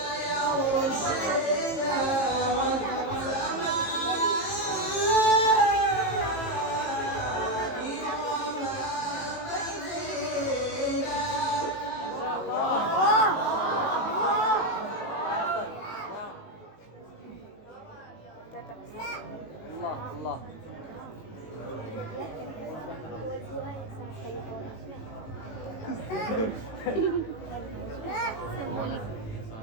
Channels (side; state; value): right; late; 19 ms